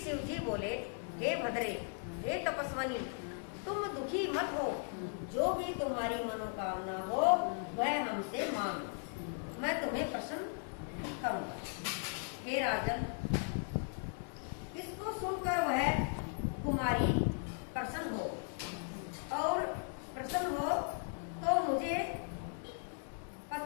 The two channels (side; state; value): right; silent; 53 dB below the other